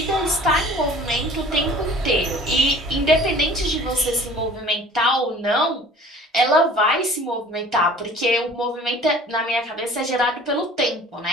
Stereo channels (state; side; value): normal; both; correlation 0.47